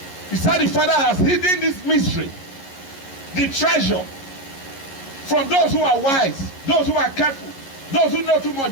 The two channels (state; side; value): late; right; 11 ms